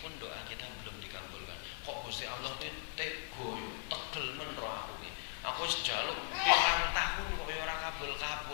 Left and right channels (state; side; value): silent; right; digital silence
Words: doa kita belum dikabulkan. Kok Gusti Allah kuwi tego yo, tegel men ro aku iki. Aku wis njaluk pirang tahun kok ora